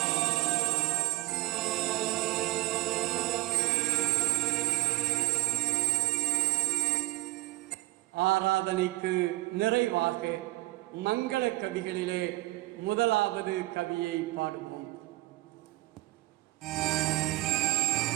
ஆராதனைக்கு நிறைவாக மங்கள கவிகளிலே முதலாவது கவியை பாடுவோம்.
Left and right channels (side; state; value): left; quieter; 19.4 dB